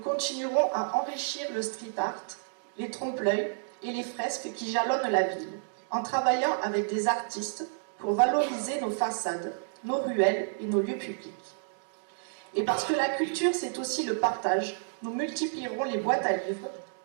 à enrichir le street art, les trompe-l'œil et les fresques qui jalonnent la ville, en travaillant avec des artistes pour valoriser nos façades, nos ruelles et nos lieux publics. Et parce que la culture, c'est aussi le partage, nous multiplierons les boîtes à livres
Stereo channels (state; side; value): silent; left; digital silence